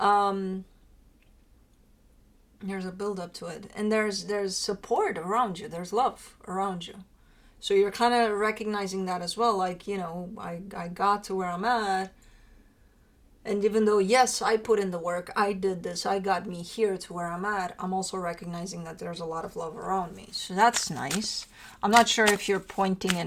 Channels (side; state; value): both; identical; correlation 1.00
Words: a build up to it, and there's support around you, there's love around you, so you're kind of recognizing that as well, like, you know, I got to where I'm at. And even though, yes, I put in the work, I did this, I got me here to where I'm at, I'm also recognizing that there's a lot of love around me. So that's nice. I'm not sure if you're pointing